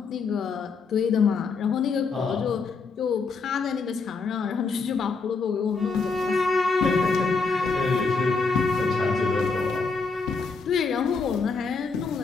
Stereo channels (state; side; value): quieter; right; 4.5 dB